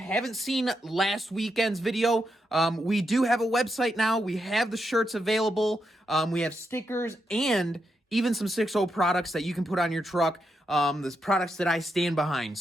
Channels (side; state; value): both; normal; correlation 0.83